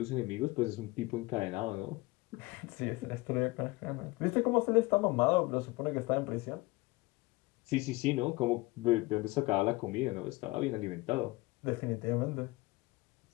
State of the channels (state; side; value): quieter; right; 22.2 dB